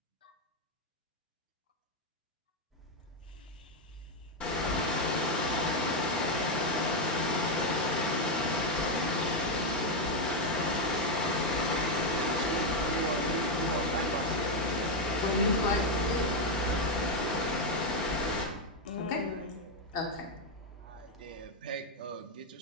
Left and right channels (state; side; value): normal; both; correlation 0.04